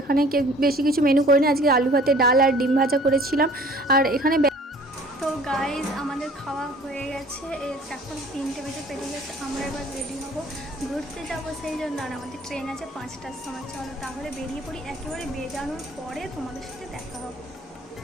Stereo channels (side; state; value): both; normal; correlation 0.51